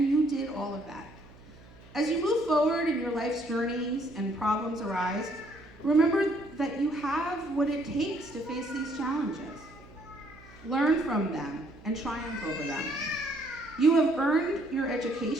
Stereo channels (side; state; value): right; noise; hum, 22 dB below the sound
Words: you did all of that. As you move forward in your life's journeys and problems arise, remember that you have what it takes to face these challenges. Learn from them and triumph over them. You have earned your